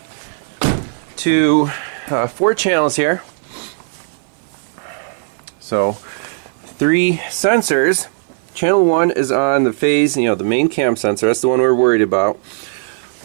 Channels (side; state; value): left; silent; 57 dB below the other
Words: to 4 channels here. So 3 sensors. Channel 1 is on the phase, the main cam sensor. That's the one we're worried about.